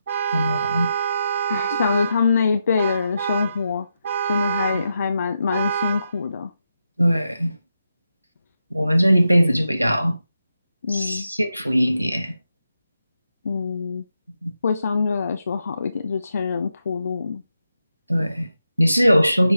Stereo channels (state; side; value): inverted; both; correlation -0.86